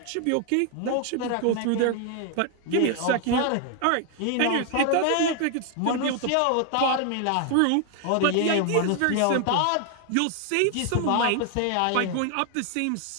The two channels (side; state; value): both; different; correlation 0.00